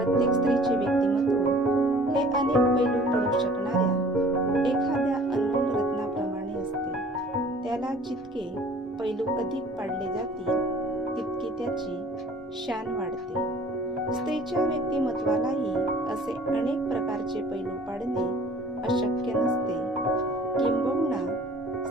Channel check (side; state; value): both; normal; correlation 0.51